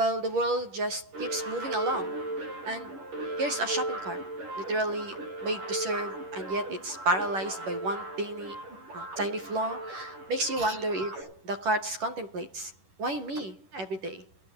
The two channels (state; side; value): late; left; 11 ms